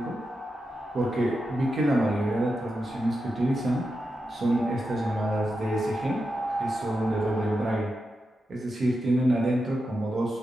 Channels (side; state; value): both; normal; correlation 0.89